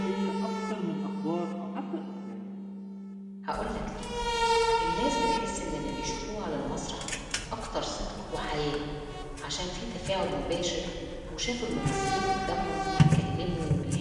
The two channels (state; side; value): identical; both; correlation 1.00